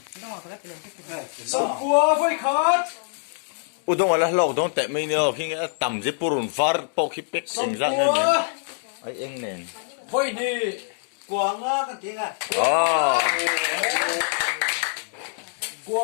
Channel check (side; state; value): right; silent; digital silence